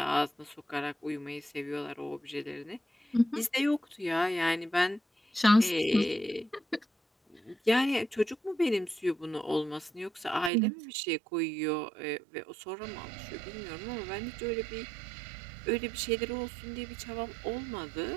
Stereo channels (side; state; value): left; drops out; at 10.5 s